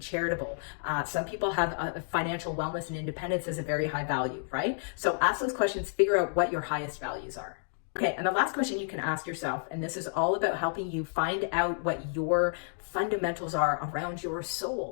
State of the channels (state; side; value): silent; right; digital silence